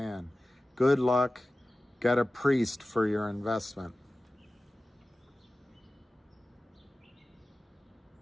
Good luck. Get a priest for your investment.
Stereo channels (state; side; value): normal; both; correlation 0.96